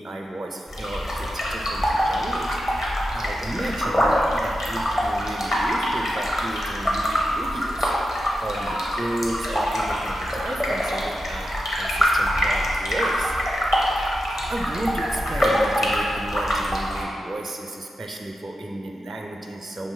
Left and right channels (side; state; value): both; normal; correlation 0.89